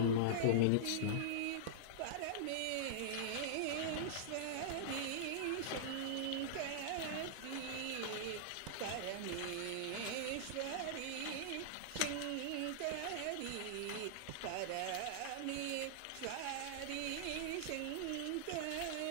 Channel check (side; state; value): both; different; correlation -0.02